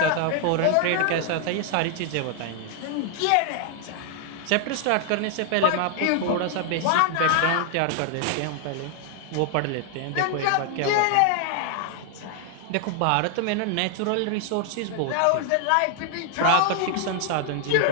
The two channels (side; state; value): both; different; correlation 0.00